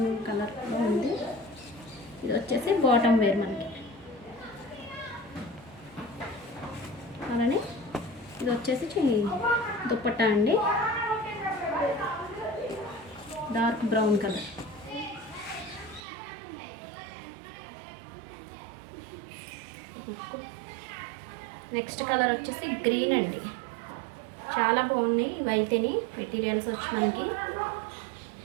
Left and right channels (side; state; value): left; drops out; at 16.0 s